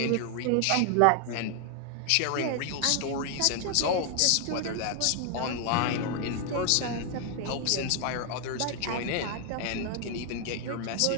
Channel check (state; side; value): different; both; correlation 0.00